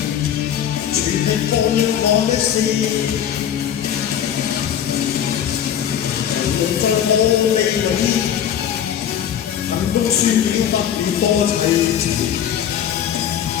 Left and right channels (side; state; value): right; quieter; 9.5 dB